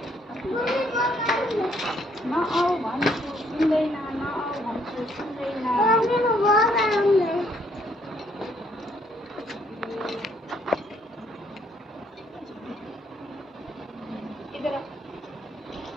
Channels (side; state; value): both; normal; correlation 0.67